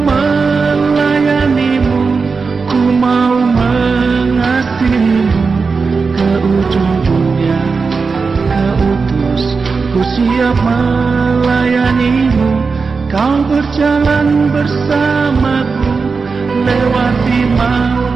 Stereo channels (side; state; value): left; quieter; 4.7 dB